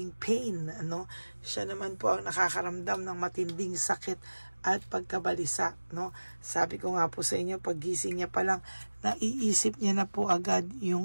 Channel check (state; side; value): inverted; both; correlation -1.00